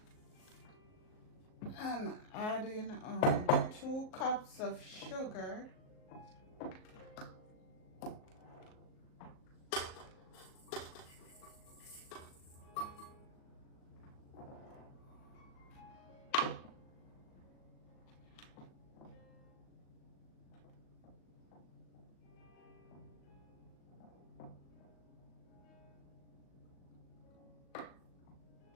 I'm adding 2 cups of sugar,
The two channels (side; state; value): right; late; 38 ms